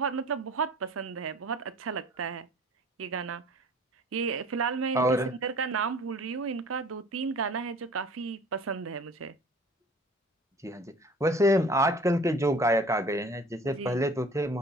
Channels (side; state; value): both; normal; correlation 0.47